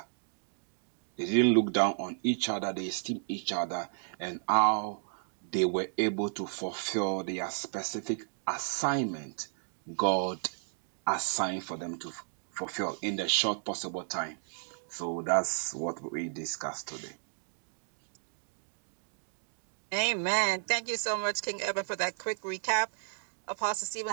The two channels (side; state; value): left; silent; digital silence